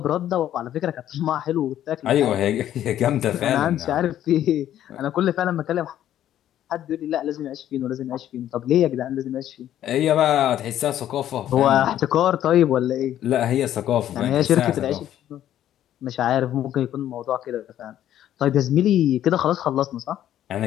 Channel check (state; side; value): quieter; right; 11.6 dB